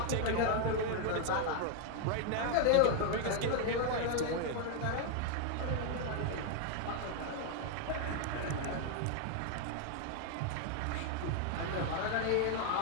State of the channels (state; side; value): different; both; correlation 0.00